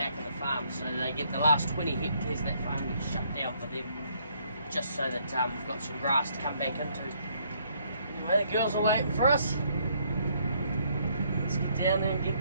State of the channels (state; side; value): inverted; both; correlation -0.68